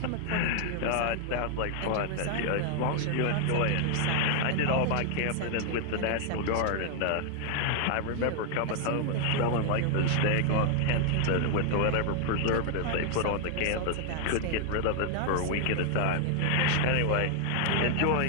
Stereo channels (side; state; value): both; different; correlation 0.00